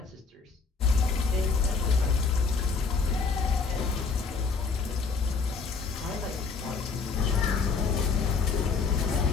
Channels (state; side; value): quieter; right; 4.8 dB